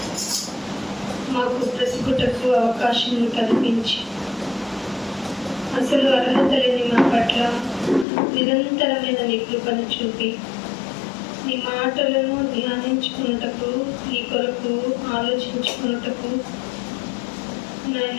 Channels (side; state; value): right; drops out; at 8.1 s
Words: మాకు బ్రతుకుటకు అవకాశం కల్పించి, అసలు అర్హత లేని మా పట్ల నిరంతరమైన నీ కృపను చూపి, నీ మాటలను ధ్యానించుకున్నటకు, నీ కొరకు ఆలోచించుకున్నటకు,